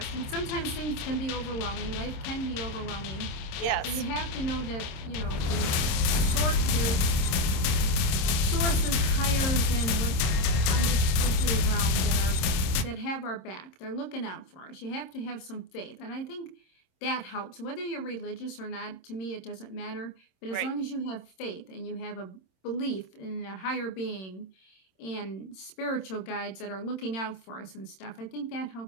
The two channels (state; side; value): late; right; 27 ms